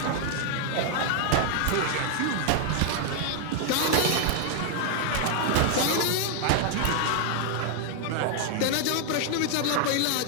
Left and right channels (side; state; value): both; different; correlation 0.00